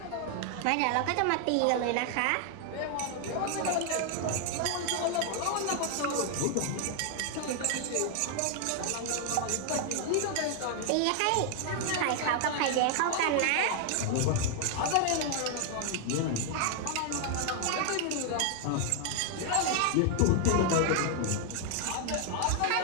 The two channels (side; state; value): both; different; correlation 0.00